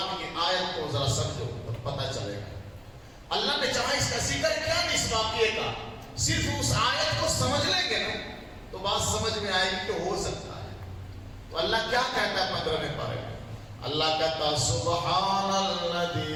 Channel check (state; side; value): identical; both; correlation 1.00